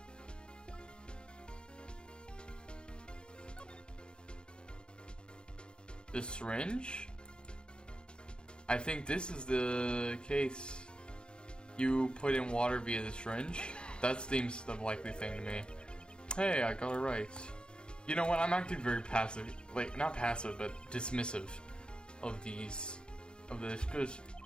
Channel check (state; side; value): late; right; 0.051 ms